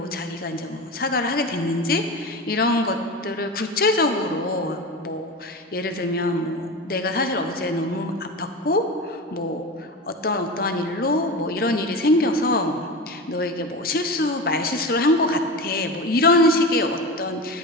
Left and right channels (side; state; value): both; normal; correlation 0.27